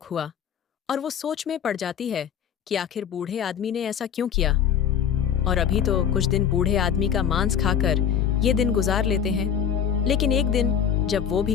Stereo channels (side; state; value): right; quieter; 8.6 dB